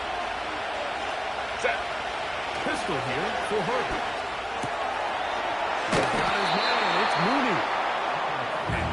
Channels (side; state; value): both; identical; correlation 1.00